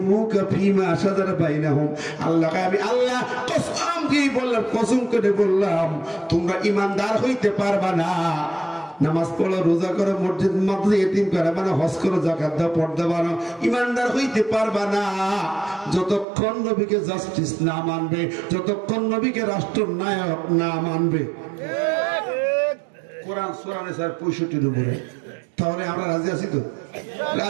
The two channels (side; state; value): left; drops out; at 16.2 s